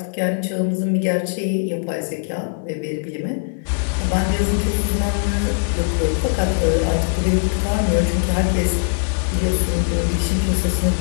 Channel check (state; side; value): silent; right; digital silence